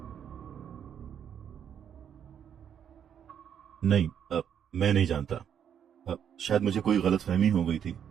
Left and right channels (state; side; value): quieter; left; 8.7 dB